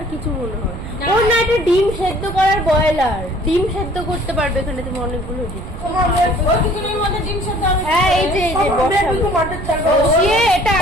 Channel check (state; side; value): noise; right; rumble, 11 dB below the sound